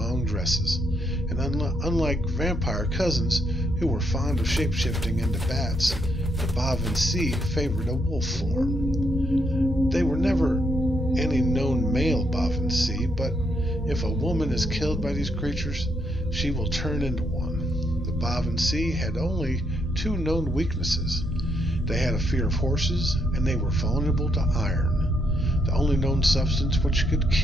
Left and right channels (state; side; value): normal; both; correlation 0.76